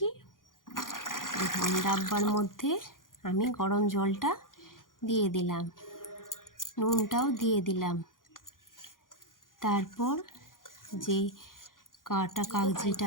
এখন ডাব্বার মধ্যে আমি গরম জলটা দিয়ে দিলাম, নুনটাও দিয়ে দিলাম। তারপর যে কাটা কাগজিটা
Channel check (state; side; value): late; right; 0.90 ms